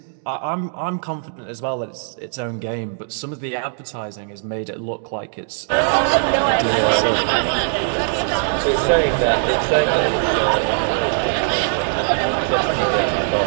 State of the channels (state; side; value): silent; left; digital silence